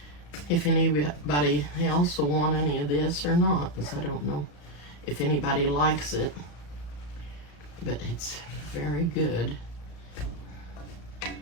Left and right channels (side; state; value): right; late; 35 ms